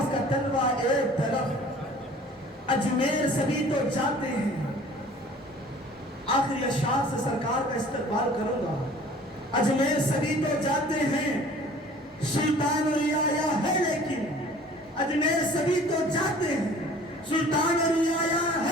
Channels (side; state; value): both; normal; correlation 0.49